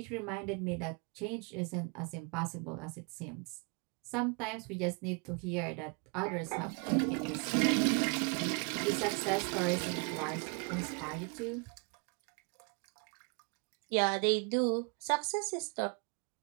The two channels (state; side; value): quieter; left; 34.1 dB